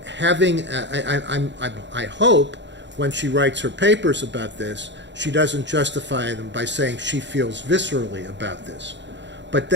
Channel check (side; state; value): left; late; 0.52 ms